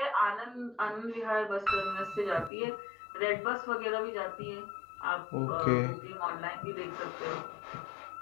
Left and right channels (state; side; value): drops out; right; at 2.5 s